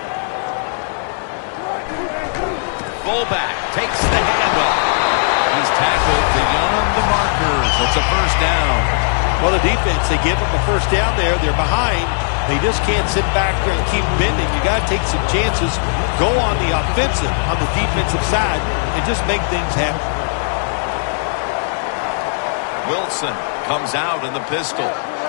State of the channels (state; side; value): silent; right; digital silence